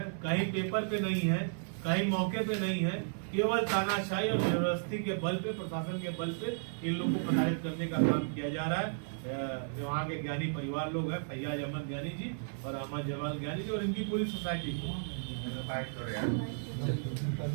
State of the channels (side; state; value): left; silent; digital silence